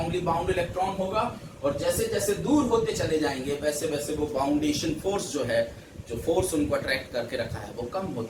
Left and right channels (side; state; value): both; identical; correlation 1.00